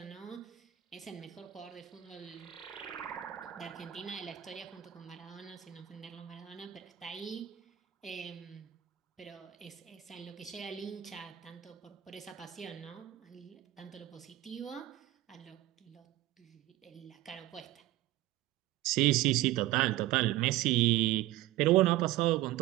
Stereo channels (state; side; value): quieter; left; 15.1 dB